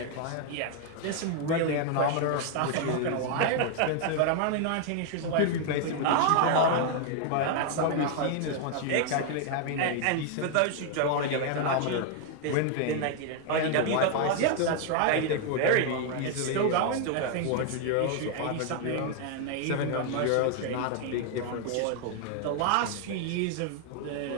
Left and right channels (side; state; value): both; different; correlation 0.00